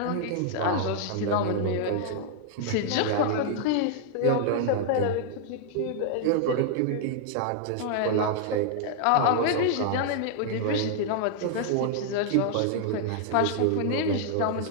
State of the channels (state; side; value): different; both; correlation 0.00